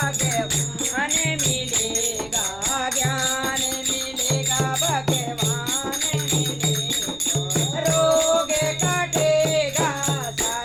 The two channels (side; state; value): right; noise; rumble, 21 dB below the sound